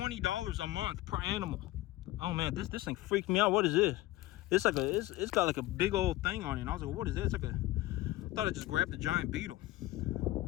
a month per animal. Oh man, this thing freaked me out. What is this? It's like it's got like a big old thing on it. And I was like, what is that? It's like I thought I just grabbed a giant beetle.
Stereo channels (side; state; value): right; quieter; 17.1 dB